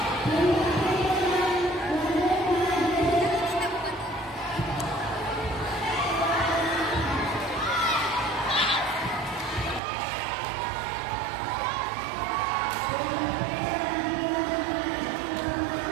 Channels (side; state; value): left; drops out; at 9.8 s